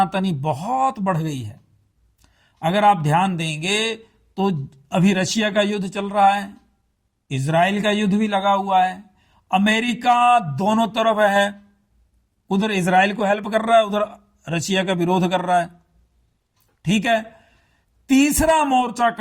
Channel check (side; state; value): both; identical; correlation 1.00